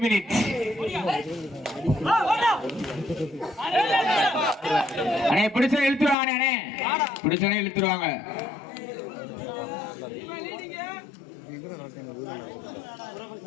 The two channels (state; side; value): drops out; right; at 6.2 s